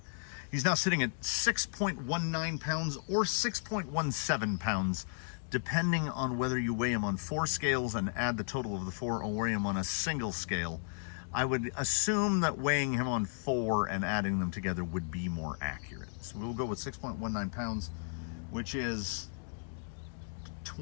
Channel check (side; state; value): right; silent; digital silence